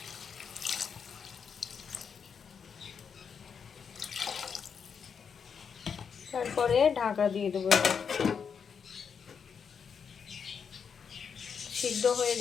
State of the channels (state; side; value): quieter; right; 6.6 dB